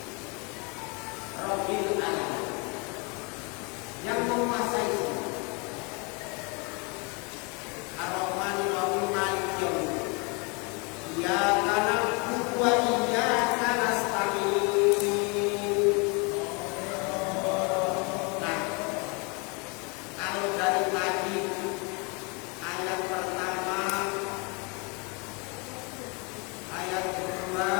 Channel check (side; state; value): right; quieter; 31.2 dB